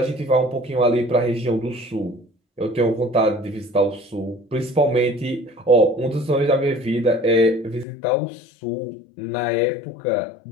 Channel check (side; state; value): right; drops out; at 7.9 s